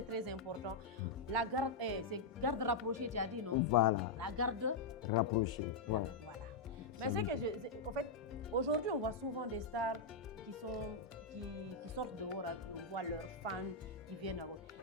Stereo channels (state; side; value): quieter; right; 3.8 dB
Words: important. La garde, c'est garde rapprochée, tu as dit, non? Voilà. La garde rapprochée. Voilà. Mais c'est que, en fait, aujourd'hui, on voit souvent des stars qui sortent dehors, on voit leurs fans qui viennent à...